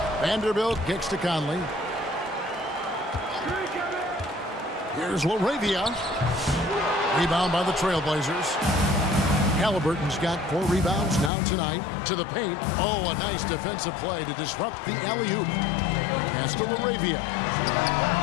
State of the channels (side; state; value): right; drops out; at 11.3 s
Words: Vanderbilt kicks to Conley. Here's LaRavia. Rebound by the Trailblazers. Halliburton's got 4 rebounds now tonight. To the paint. Oh, a nice defensive play to disrupt the alley-oop. Pass to LaRavia.